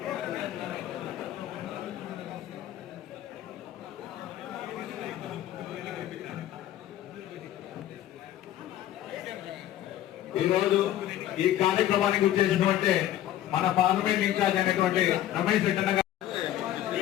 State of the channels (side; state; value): right; quieter; 12.7 dB